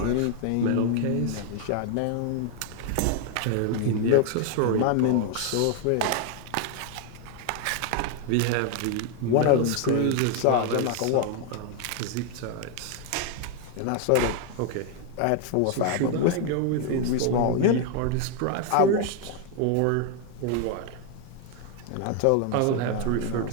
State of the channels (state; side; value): different; both; correlation 0.01